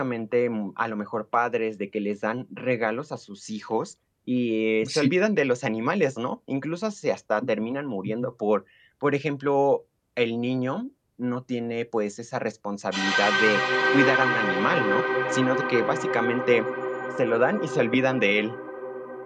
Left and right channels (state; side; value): identical; both; correlation 1.00